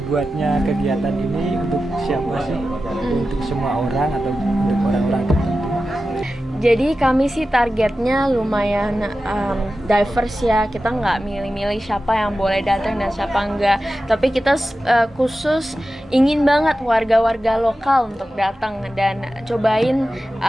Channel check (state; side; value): normal; both; correlation 0.93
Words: kegiatan ini untuk siapa sih? Untuk semua orang atau untuk orang-orang tertentu? Jadi kami sih targetnya lumayan diverse ya. Kita nggak milih-milih siapa yang boleh datang dan siapa enggak. Tapi kita khusus ingin banget warga-warga lokal untuk datang dan cobain